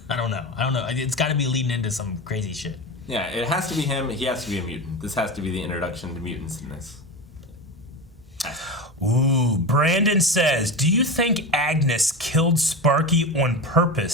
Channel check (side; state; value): both; normal; correlation 0.24